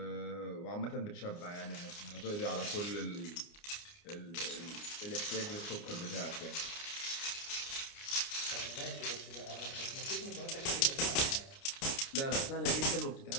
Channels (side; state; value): right; late; 29 ms